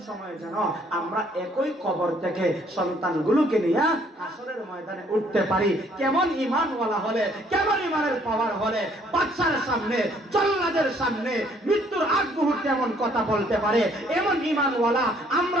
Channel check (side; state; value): both; normal; correlation 0.63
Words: সময় যেন আমরা একই কবর থেকে সন্তানগুলোকে নিয়ে হাসরের ময়দানে উঠতে পারি। কেমন ঈমানওয়ালা হলে, কেমন ঈমানের পাওয়ার হলে বাদশার সামনে, জল্লাদের সামনে মৃত্যুর আগ মুহূর্তে এমন কথা বলতে পারে, এমন ঈমানওয়ালা